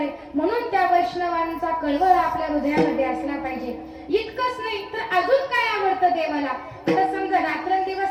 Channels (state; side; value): identical; both; correlation 1.00